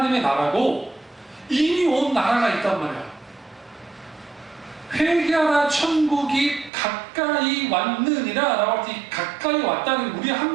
나라고 이미 온 나라가 있단 말이야. 회개하라 천국이 가까이 왔느니라 라고 할 때 가까이 왔다는 우리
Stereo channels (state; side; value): drops out; left; at 6.7 s